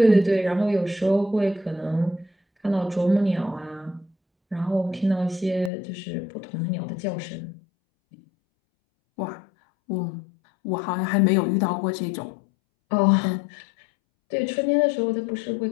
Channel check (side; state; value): right; drops out; at 5.7 s